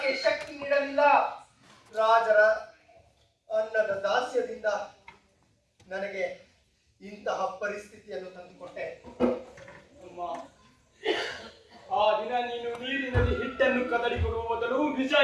ಶಕ್ತಿ ನೀಡಲಿಲ್ಲ? ರಾಜರ ಅನ್ನದ ದಾಸ್ಯದಿಂದ ನನಗೆ ಇಂತಹ ಪರಿಸ್ಥಿತಿಯನ್ನು ತಂದುಕೊಟ್ಟೆ. ಅಮ್ಮ, ಆ ದಿನ ನೀನು ನೀರಿನಲ್ಲಿ ಹಿಟ್ಟನ್ನು ಕದಡಿ ಕೊಡುವ ಮೊದಲು ನಿಜ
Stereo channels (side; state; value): both; identical; correlation 1.00